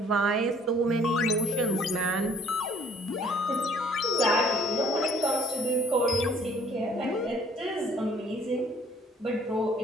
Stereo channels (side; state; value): both; normal; correlation 0.58